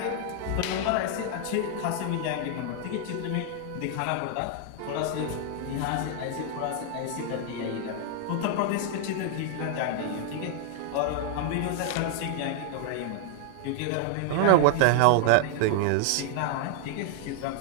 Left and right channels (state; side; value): different; both; correlation 0.00